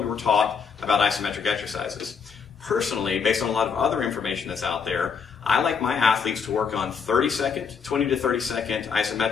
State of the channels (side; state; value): right; quieter; 6.2 dB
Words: we were taught about isometric exercises. Personally, based on a lot of other information that's out there, I like my athletes to work on 30-second, 20 to 30-second